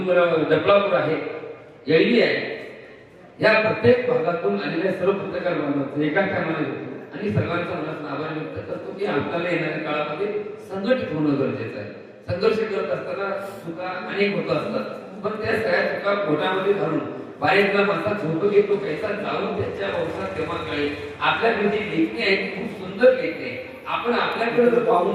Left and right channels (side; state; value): both; identical; correlation 1.00